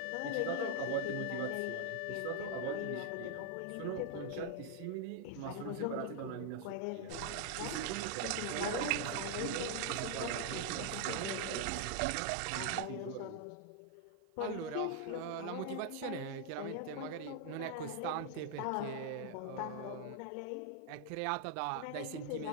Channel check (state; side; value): different; both; correlation 0.00